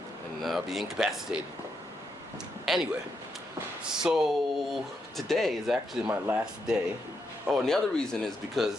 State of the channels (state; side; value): normal; both; correlation 0.81